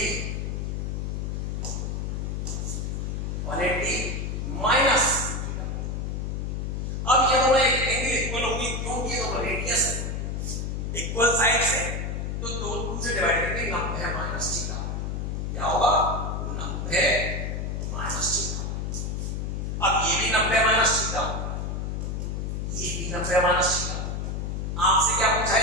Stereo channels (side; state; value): left; noise; hum, 2 dB below the sound